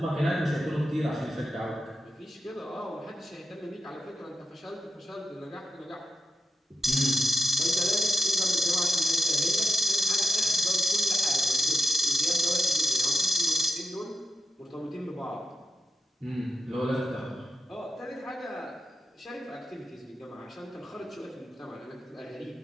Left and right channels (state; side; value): normal; both; correlation 0.87